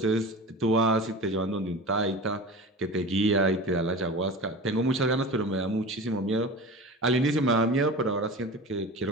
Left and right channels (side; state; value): both; normal; correlation 0.33